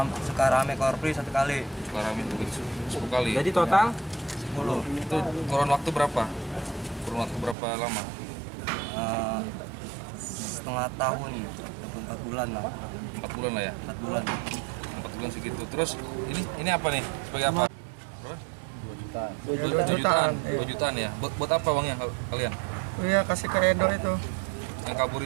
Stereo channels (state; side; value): drops out; left; at 7.6 s